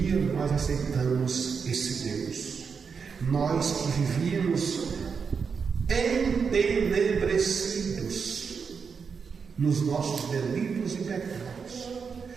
nós aceitamos esse Deus. Nós que vivíamos entenebrecidos nos nossos delitos e pecados,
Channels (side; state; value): left; quieter; 5.9 dB